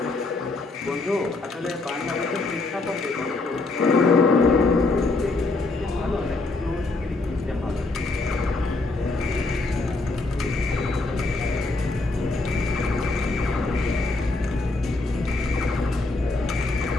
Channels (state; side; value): quieter; right; 3.3 dB